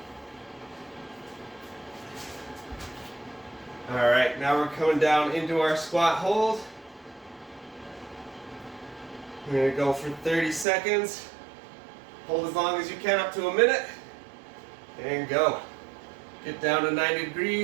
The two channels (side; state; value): left; drops out; at 10.7 s